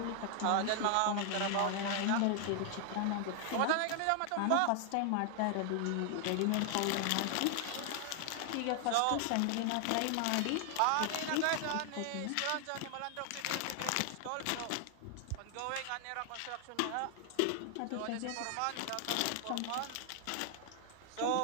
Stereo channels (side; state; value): both; different; correlation 0.00